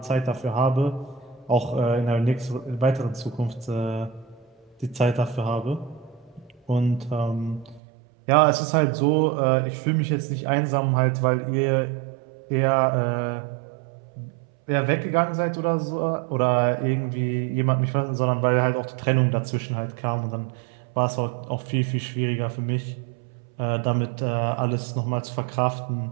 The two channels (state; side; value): drops out; left; at 7.8 s